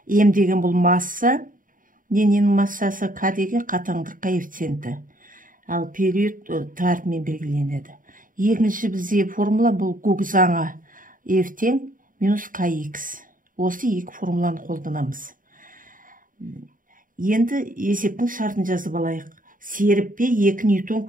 М деген бұл масса, дененің массасы, К деген қатаңдық коэффициенті. Ал период тарпымен белгіленеді. Екінші бізде формула бұл Гук заңы F тең минус Kx. Осы екі формуланы қолданамыз. Енді есептің шартын жазып алайық. Серіппеге 2 ньютон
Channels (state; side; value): late; left; 0.39 ms